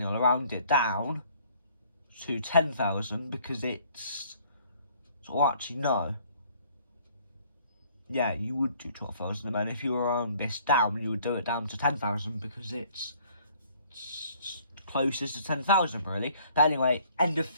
you'll round it down to 10,000 because it's... So actually, no. Yeah, you would do 12,000, and then if you were round this down, you would do it down to 10,000 because it's closest to 10,000, really. But anyway, end of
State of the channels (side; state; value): both; inverted; correlation -0.58